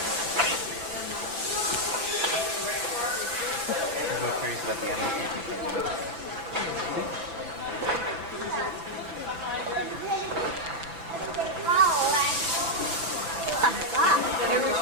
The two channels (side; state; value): left; late; 6.0 ms